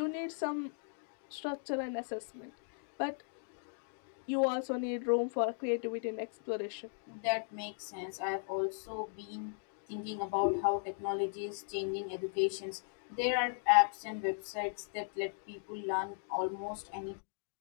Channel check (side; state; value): right; silent; digital silence